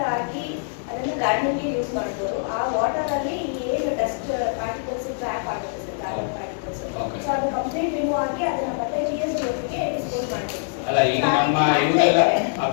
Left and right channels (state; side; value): silent; right; digital silence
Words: ಆಗಿ ಅದನ್ನು ಗಾರ್ಡನಿಂಗ್ಗೆ ಯೂಸ್ ಮಾಡ್ಬೋದು. ಆ ವಾಟರ್ ಅಲ್ಲಿ ಏನು ಡಸ್ಟ್ ಪಾರ್ಟಿಕಲ್ಸ್ ಟ್ರ್ಯಾಪ್ ಆಗುತ್ತೆ ಸರ್, ಕಾರ್ಬನ್ ಪಾರ್ಟಿಕಲ್ಸ್, ಸೊ ಅದು ಕಂಪ್ಲೀಟ್ ರಿಮೂವ್ ಆಗಿ ಅದನ್ನ ಮತ್ತೆ ಜಿಎಸ್ ಜೊತೆಗೆ ಡಿಸ್ಪೋಸ್ ಮಾಡ್ತೀವಿ. ಅಲ್ಲ, ಈಗ ನಮ್ಮ ಇವರೆಲ್ಲ